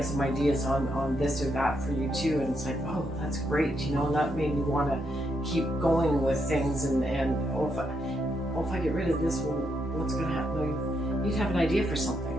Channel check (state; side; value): normal; both; correlation 0.79